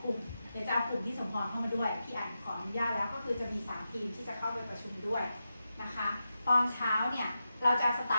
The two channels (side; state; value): both; inverted; correlation -0.90